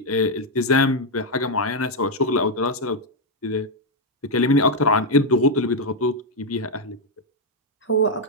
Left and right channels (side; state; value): both; normal; correlation 0.00